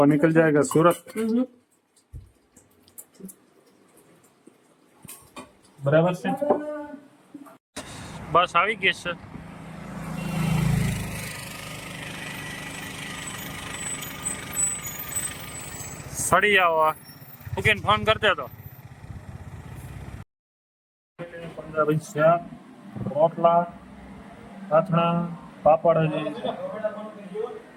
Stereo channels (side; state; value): both; identical; correlation 1.00